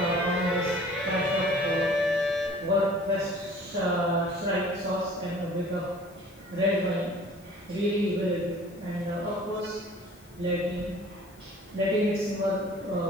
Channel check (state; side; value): noise; left; hiss, 29 dB below the sound